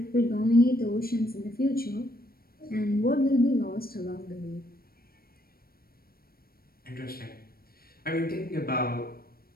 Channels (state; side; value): late; right; 0.44 ms